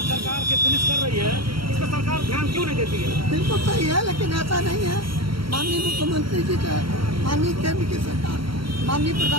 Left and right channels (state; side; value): late; left; 0.74 ms